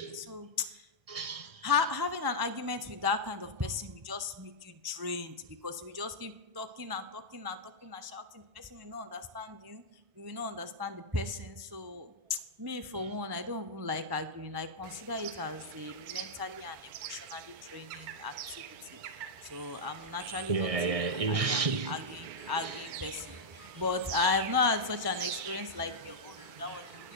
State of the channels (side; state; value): left; late; 1.1 ms